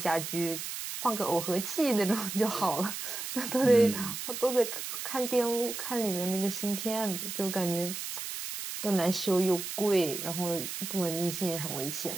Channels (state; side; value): noise; right; hiss, 6 dB below the sound